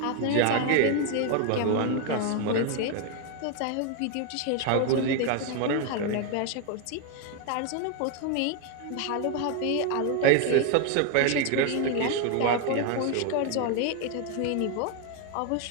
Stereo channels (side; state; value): both; different; correlation 0.01